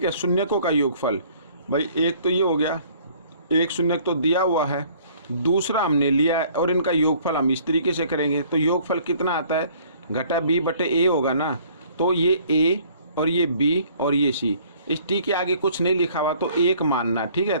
है, शून्यकों का योगफल, भाई एक तो ये हो गया, एक शून्यक तो दिया हुआ है, दूसरा हमने लिया है, और इनका योगफल हम इस तरीके से करेंगे। तो योगफल कितना आता है, घटा बी बटे ए होगा ना। तो ये ए और ये बी और ये सी, इस टी के आगे कुछ नहीं लिखा हुआ तो एक मानना। ठीक है,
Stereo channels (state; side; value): inverted; both; correlation -0.57